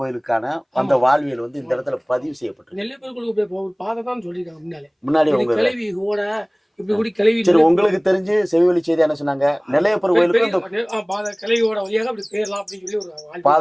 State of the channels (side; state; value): both; identical; correlation 1.00